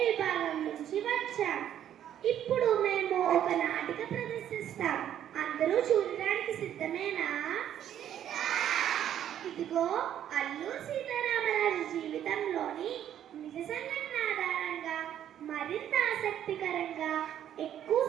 విభాగం నుంచి వచ్చాం. ఇప్పుడు మేము ఒక నాటిక ప్రదర్శిస్తాం. అందరూ చూడడానికి సిద్ధమేనా? ఇదిగో అల్లూరి సీతారామరాజు జీవితంలోని నిజ సంఘటన ఆధారంగా మరింత ఆసక్తికరంగా ఎక్కువ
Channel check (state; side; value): quieter; left; 10.6 dB